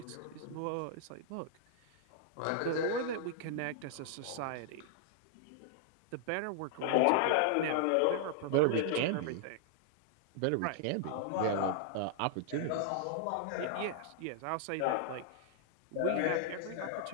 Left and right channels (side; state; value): both; different; correlation -0.01